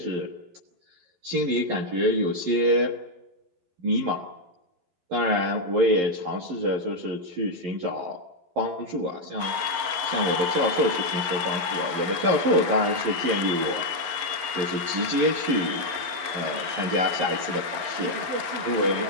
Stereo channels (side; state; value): left; late; 11 ms